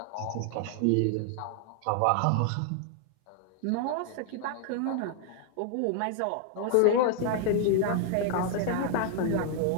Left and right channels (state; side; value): different; both; correlation 0.00